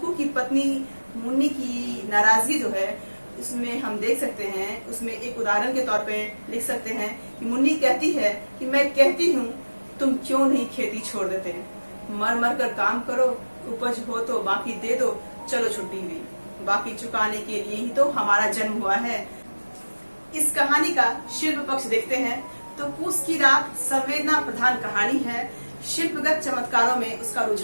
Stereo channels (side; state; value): both; inverted; correlation -1.00